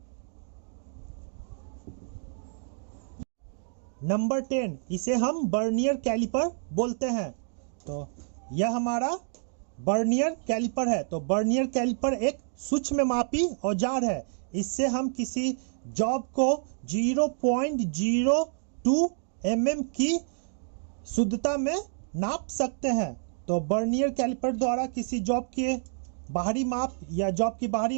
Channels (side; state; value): left; silent; digital silence